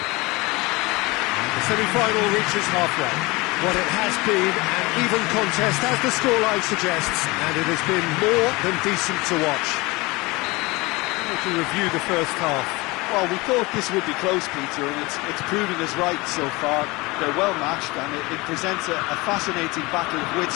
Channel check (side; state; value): right; quieter; 23.5 dB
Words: The semi-final reaches halfway. What it has been an even contest, as the scoreline suggests, and it has been more than decent to watch. To review the first half. Well, we thought this would be close, Peter, and it's proving us right so far. They're well matched, and it presents a fascinating battle of wits